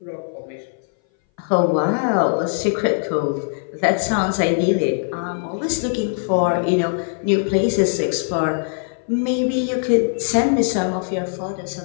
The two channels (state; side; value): silent; right; 60 dB below the other